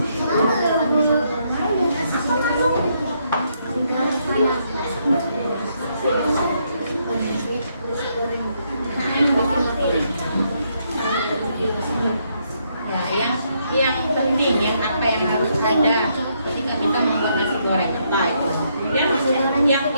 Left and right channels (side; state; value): both; inverted; correlation -0.75